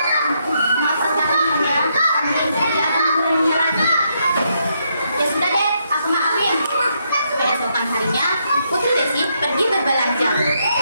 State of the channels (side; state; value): both; inverted; correlation -0.77